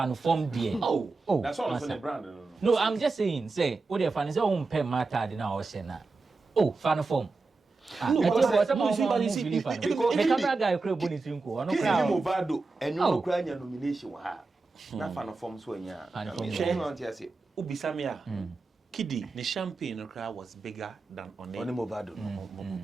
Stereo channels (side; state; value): left; quieter; 3.8 dB